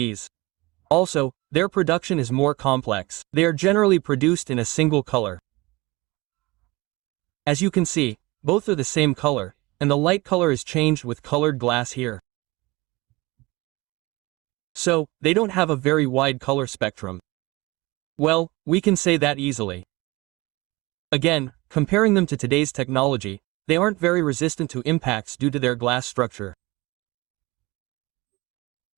Also, their production is more complex. They are generally produced in a single color. As you can see, both are the same color, and the light color is changed with colored glass here. So, they don't have a very wide color spectrum. Well, we can say that easily. Again, comparing them to today's technology, they aren't very resistant to impacts due to their glass structure.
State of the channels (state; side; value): quieter; left; 22.4 dB